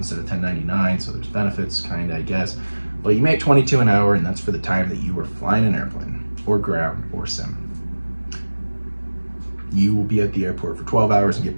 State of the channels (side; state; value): both; inverted; correlation -1.00